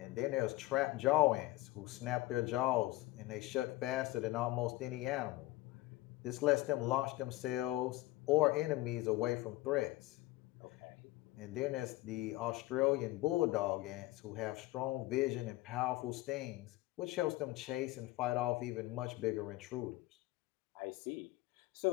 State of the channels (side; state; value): right; quieter; 18.3 dB